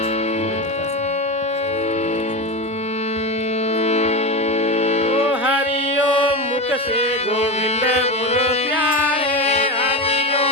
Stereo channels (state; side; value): normal; both; correlation 0.20